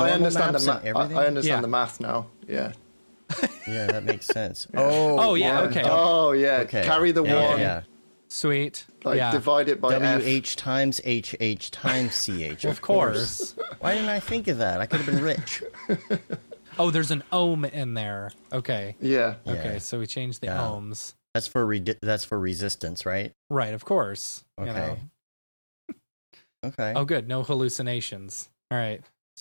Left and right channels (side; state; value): both; inverted; correlation -1.00